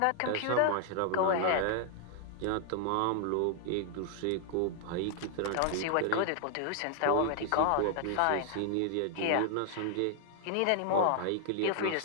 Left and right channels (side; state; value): both; different; correlation -0.01